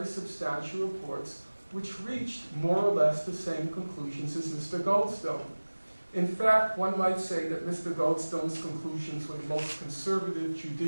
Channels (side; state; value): both; inverted; correlation -1.00